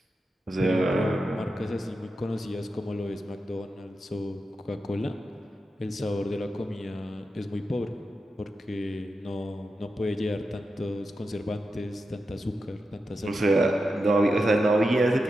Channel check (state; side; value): normal; both; correlation 0.89